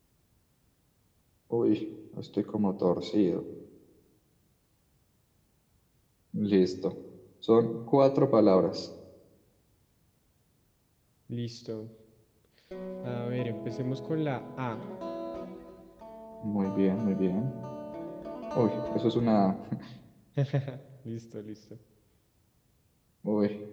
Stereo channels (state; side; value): identical; both; correlation 1.00